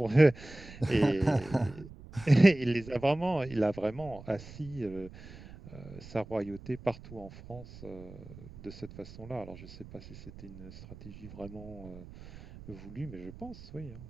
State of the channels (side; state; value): right; noise; rumble, 16 dB below the sound